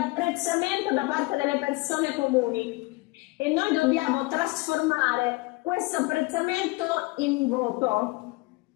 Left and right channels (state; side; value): quieter; right; 24.0 dB